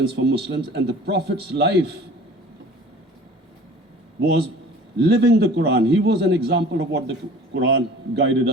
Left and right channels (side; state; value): both; normal; correlation 0.45